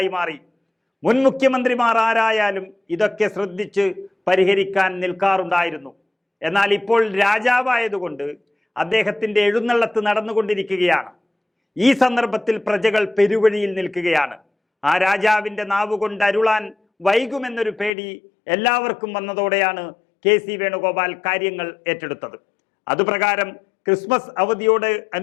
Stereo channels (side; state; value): right; drops out; at 17.9 s